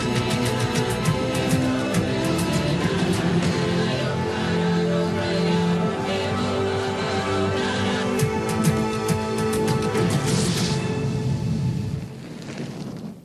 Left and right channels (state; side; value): identical; both; correlation 1.00